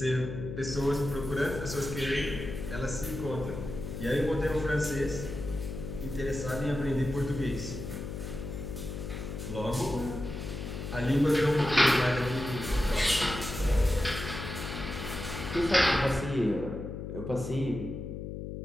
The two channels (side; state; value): left; noise; hum, 7 dB below the sound